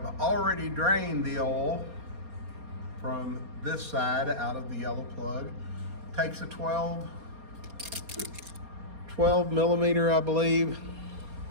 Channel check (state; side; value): late; left; 4.3 ms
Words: already drained the oil from this side out of the yellow plug. Takes a 12 millimeter, I believe.